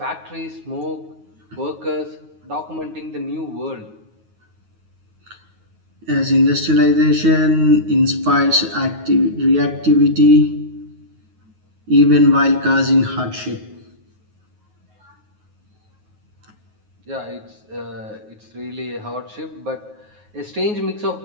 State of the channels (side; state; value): left; late; 9.4 ms